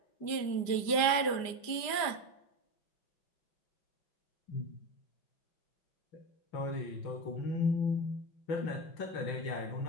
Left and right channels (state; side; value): late; right; 5.1 ms